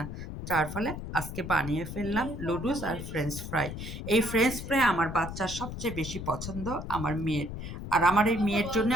যার ফলে আজকে বানিয়ে ফেললাম লুডুস আর ফ্রেঞ্চ ফ্রাই। এই ফ্রেঞ্চ ফ্রাই আমার বাচ্চার সবচেয়ে বেশি পছন্দ, আমার মেয়ের। আর আমার এই মেয়ের জন্য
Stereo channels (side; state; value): left; noise; rumble, 8 dB below the sound